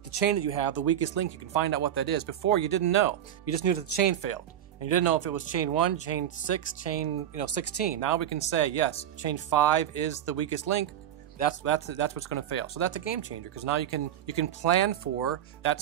chain that you have, the weakest link, you can find out what that is. Before, you didn't know. You just knew that the chain failed. And you didn't know if it was chain 1, chain 6, chain 16. Now we can say, yes, chain 5 is the weakest link. That's what's going to fail. So that's a game changer, because now you can plan for that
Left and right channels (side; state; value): left; quieter; 10.7 dB